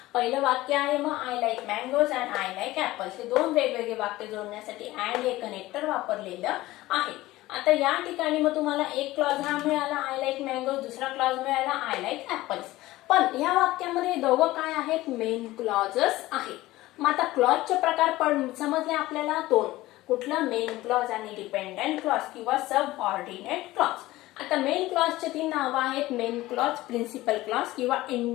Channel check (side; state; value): right; quieter; 17.5 dB